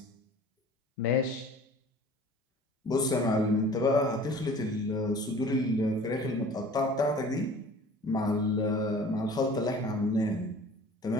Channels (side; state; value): both; normal; correlation 0.46